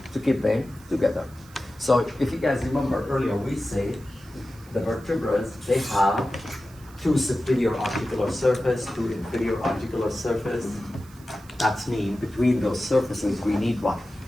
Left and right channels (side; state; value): right; noise; hiss, 25 dB below the sound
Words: to keep them together. So if you guys remember earlier, we said the vertebrae, they have 2 superior articular surface, 2 inferior articular surface. That's mean between those surfaces we need what?